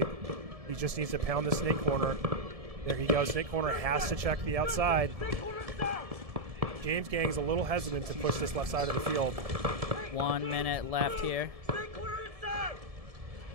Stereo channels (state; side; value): late; left; 1.7 ms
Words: He just needs to pound the snake corner. There he goes. Snake corner has to check the outside. James Gang's a little hesitant to push this left side of the field. 1 minute left here.